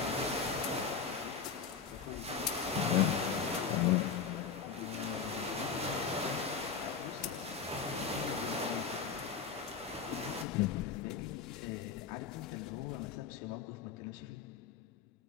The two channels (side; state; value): right; quieter; 6.1 dB